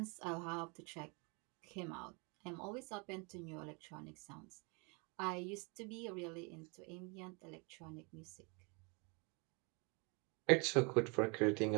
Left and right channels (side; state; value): left; quieter; 32.2 dB